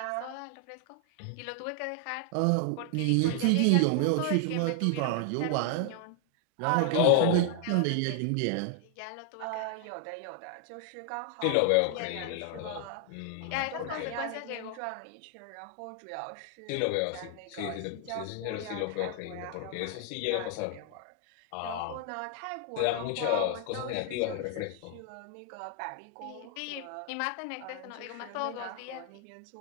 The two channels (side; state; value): both; different; correlation 0.00